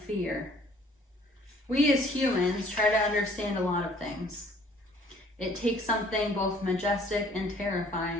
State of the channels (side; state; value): both; normal; correlation 0.57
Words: We as humans try to understand a lot of things. It takes something both majestic and